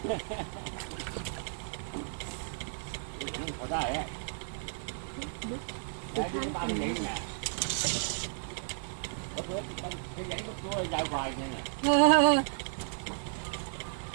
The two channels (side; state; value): left; silent; digital silence